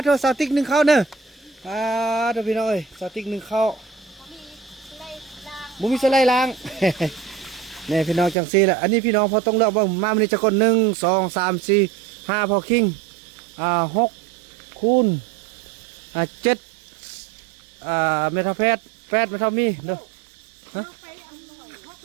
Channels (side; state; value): left; drops out; at 8.3 s